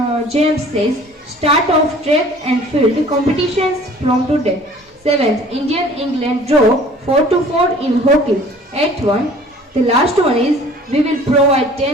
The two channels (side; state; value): both; normal; correlation 0.50